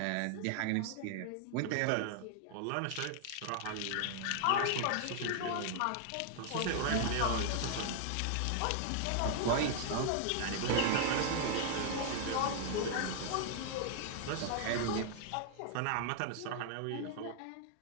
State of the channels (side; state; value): both; different; correlation 0.00